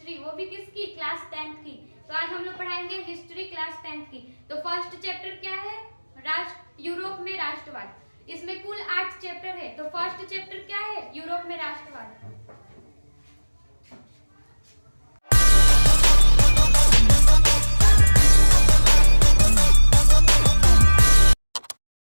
वो भी किसकी? क्लास 10th की। तो आज हम लोग पढ़ाएंगे हिस्ट्री क्लास 10th की। तो फर्स्ट चैप्टर क्या है? यूरोप में राष्ट्रवाद। इसमें कुल 8 चैप्टर है। तो फर्स्ट चैप्टर क्या है? यूरोप में राष्ट्रवाद।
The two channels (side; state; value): both; inverted; correlation -1.00